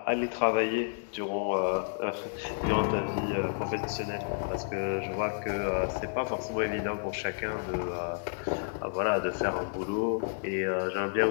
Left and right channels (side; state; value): right; silent; digital silence